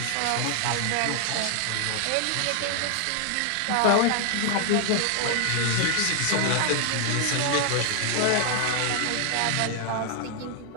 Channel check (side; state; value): both; different; correlation 0.00